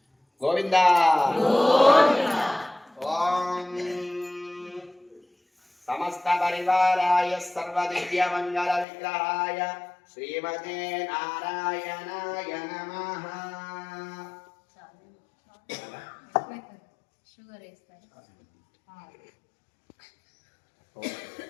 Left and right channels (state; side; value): drops out; right; at 8.8 s